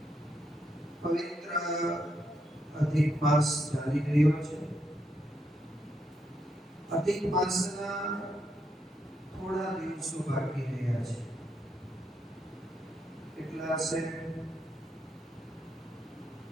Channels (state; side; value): normal; both; correlation 0.79